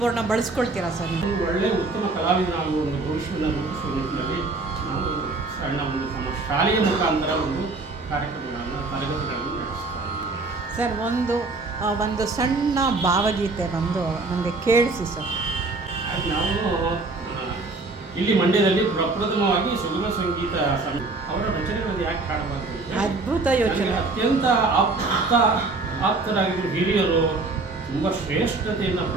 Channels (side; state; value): left; quieter; 3.5 dB